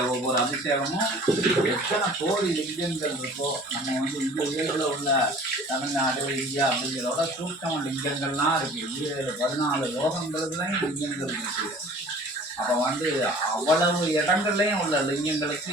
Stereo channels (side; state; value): both; normal; correlation 0.47